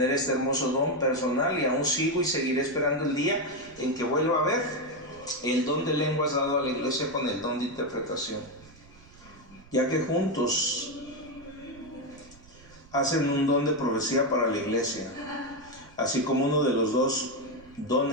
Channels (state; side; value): noise; right; rumble, 24 dB below the sound